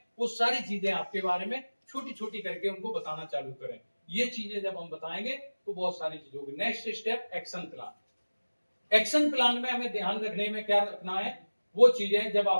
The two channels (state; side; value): inverted; both; correlation -1.00